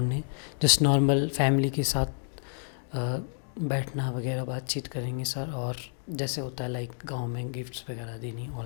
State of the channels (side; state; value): right; silent; digital silence